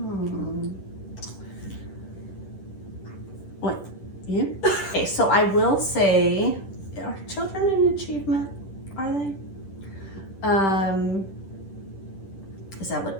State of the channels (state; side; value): late; right; 10 ms